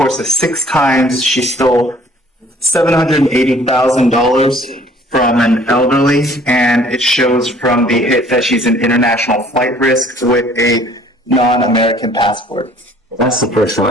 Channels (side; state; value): both; normal; correlation 0.55